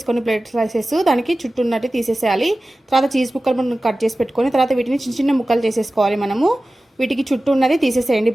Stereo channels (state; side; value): normal; both; correlation 0.96